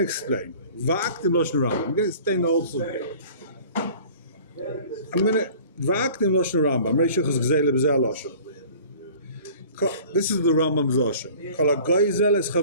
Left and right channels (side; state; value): both; inverted; correlation -0.46